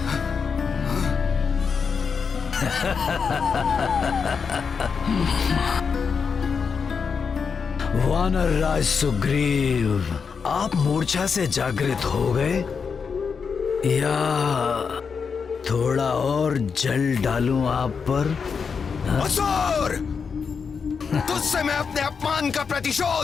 वानर राज सुग्रीव, आप मूर्छा से जागृत हो गए या थोड़ा और जल डालूं आप पर? असुर, तुझसे मैं अपने अपमान का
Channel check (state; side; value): quieter; right; 5.8 dB